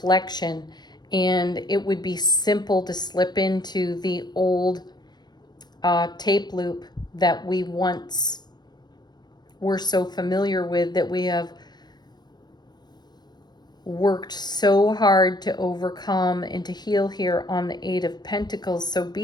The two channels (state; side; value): late; right; 0.20 ms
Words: and it would be simple to slip into the old tape loop that we once were so familiar with, that we have worked so hard to overcome and to heal here on the 8 of Pentacles. So